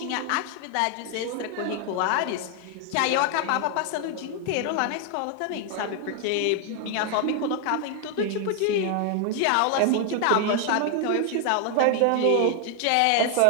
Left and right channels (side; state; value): both; different; correlation 0.00